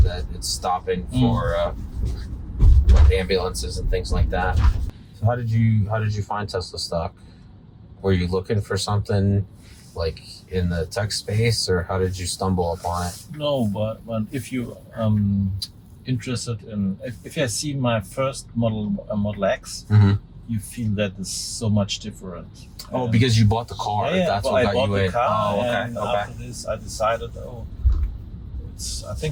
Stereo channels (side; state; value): both; identical; correlation 1.00